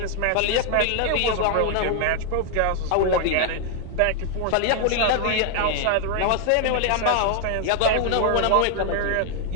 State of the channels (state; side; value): different; both; correlation 0.00